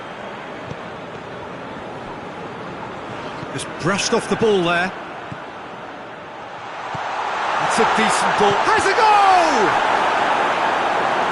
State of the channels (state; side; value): identical; both; correlation 1.00